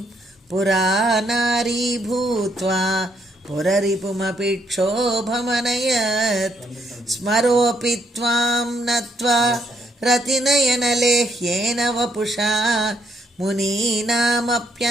పురానారీ భూత్వా పురరిపుమపి క్షోభమనయత్ స్మరోపి త్వాం నత్వా రతినయనలేహ్యేన వపుషా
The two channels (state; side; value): normal; both; correlation 0.72